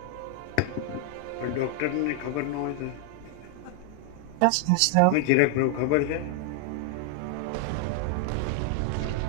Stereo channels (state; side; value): different; both; correlation 0.00